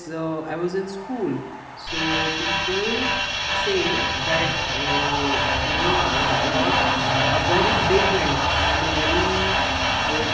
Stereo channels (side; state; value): both; identical; correlation 1.00